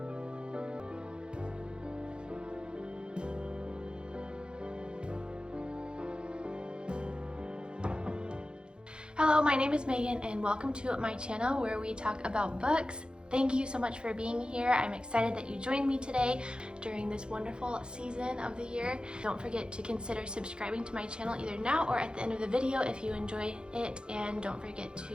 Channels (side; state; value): left; late; 0.051 ms